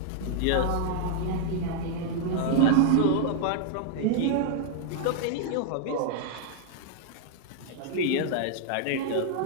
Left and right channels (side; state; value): both; different; correlation -0.01